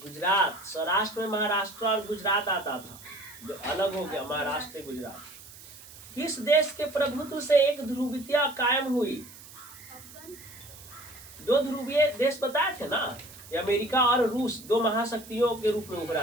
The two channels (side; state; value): right; noise; hiss, 18 dB below the sound